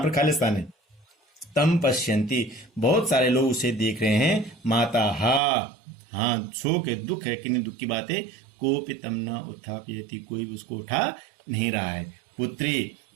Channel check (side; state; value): left; drops out; at 5.4 s